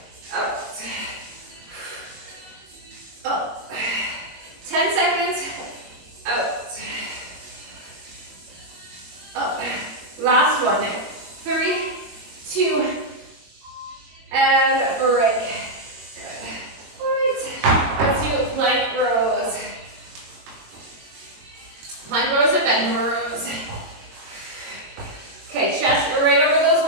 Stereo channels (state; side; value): late; left; 22 ms